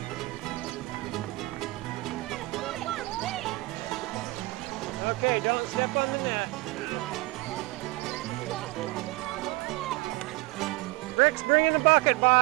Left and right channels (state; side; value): quieter; left; 22.3 dB